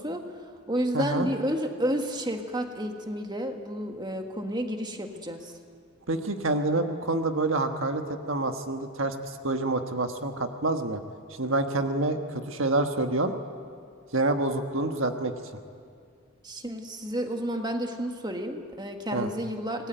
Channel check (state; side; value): normal; both; correlation 0.17